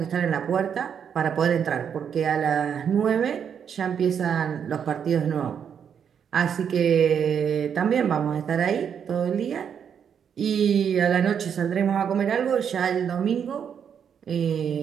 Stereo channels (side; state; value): left; quieter; 7.8 dB